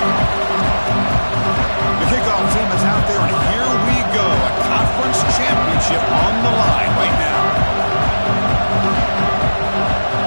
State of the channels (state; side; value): inverted; both; correlation -1.00